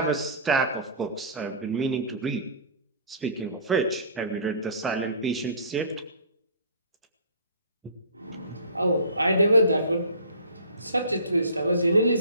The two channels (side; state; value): both; inverted; correlation -0.43